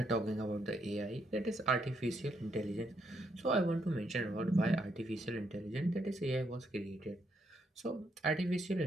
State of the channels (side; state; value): both; normal; correlation 0.76